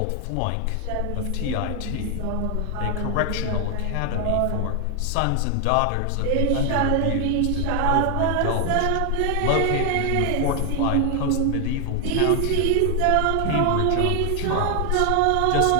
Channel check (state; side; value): different; both; correlation 0.00